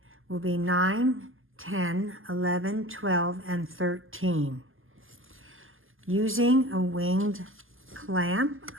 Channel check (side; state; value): left; late; 0.59 ms